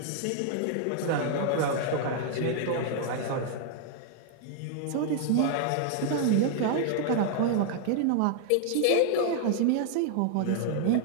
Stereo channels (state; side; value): different; both; correlation 0.00